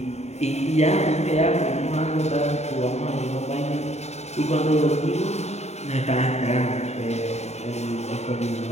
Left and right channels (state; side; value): late; right; 0.32 ms